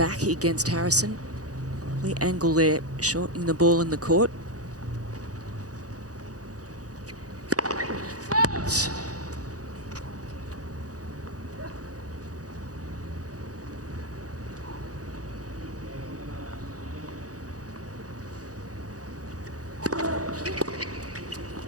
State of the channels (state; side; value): late; left; 0.67 ms